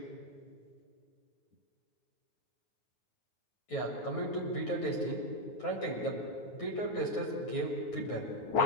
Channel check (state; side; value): late; right; 9.2 ms